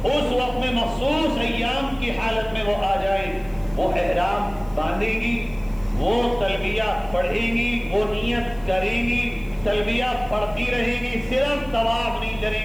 اس وقت میں مخصوص ایام کی حالت میں وہ آ جائے، وہ احرام باندھے گی، وہ تلبیہ پڑھیں گی، وہ نیت کریں گی، تلبیہ پڑھتی رہیں گی، صرف طواف نہیں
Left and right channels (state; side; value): noise; left; hiss, 27 dB below the sound